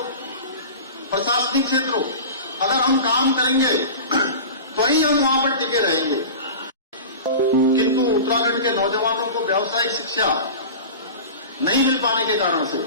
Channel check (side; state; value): both; inverted; correlation -0.33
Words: प्रशासनिक क्षेत्र हो, अगर हम काम करेंगे तो ही हम वहां पर टिके रहेंगे। किंतु उत्तराखंड के नौजवानों को व्यावसायिक शिक्षा नहीं मिल पाने के कारण से